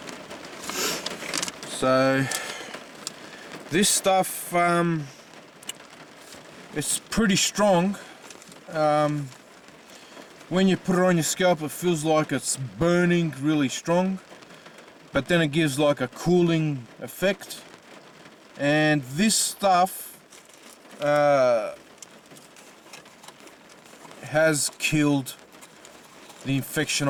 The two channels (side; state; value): both; identical; correlation 1.00